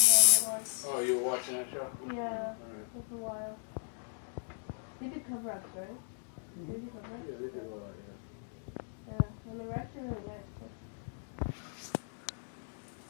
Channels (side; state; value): right; silent; digital silence